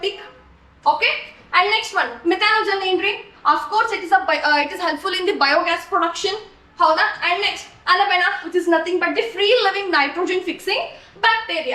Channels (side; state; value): both; identical; correlation 1.00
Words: Okay, and next one methanogen ಏನ್ರಿ, of course it is helpful in the biogas production, ಹೌದಾ. And next ಅನಬೆನಾ which is nothing but the free living nitrogen fixing